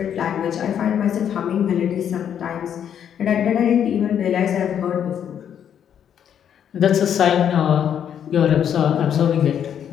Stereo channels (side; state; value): right; quieter; 9.0 dB